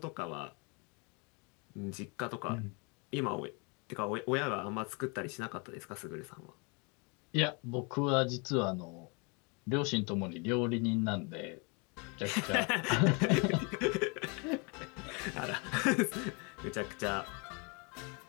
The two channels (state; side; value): quieter; right; 32.5 dB